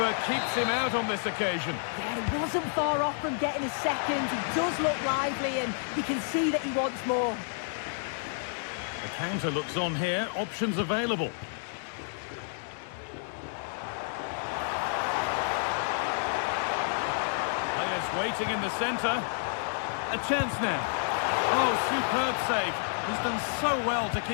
keeps him out on this occasion. Yeah, he wasn't far off from getting his second. He does look lively, and you can see that he wants more. The counter looks on here, options available. Players waiting in the centre. A chance now. Oh, superb save. He's done so well to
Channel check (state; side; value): silent; right; digital silence